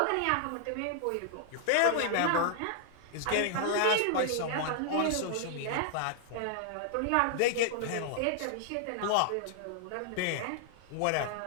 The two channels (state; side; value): different; both; correlation 0.00